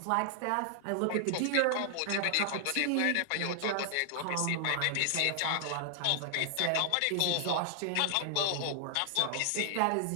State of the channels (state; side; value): different; both; correlation 0.00